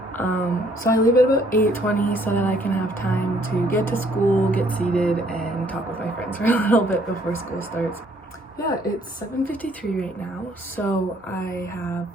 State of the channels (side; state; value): both; normal; correlation 0.64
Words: So I leave at about 8:20 so that I can have time to get to school, get seated, and talk with my friends for a little bit before school starts. Yeah, it's 7:53 right now, so I have